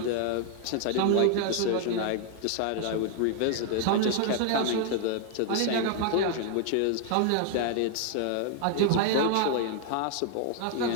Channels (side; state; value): both; different; correlation 0.00